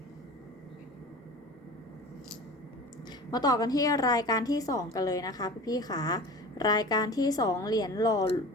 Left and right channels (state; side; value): normal; both; correlation 0.37